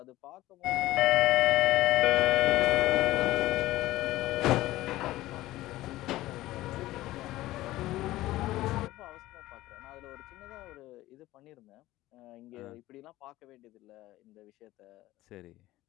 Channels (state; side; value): quieter; right; 16.7 dB